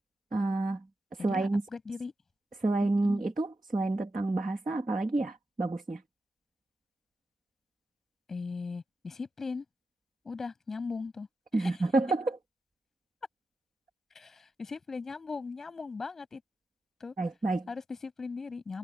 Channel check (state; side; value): normal; both; correlation 0.89